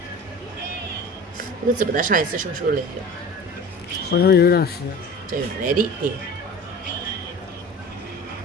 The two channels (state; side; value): normal; both; correlation 0.39